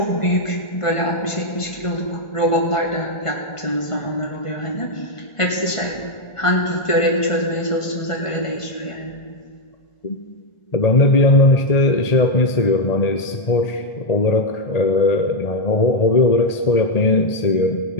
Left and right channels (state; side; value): late; right; 1.5 ms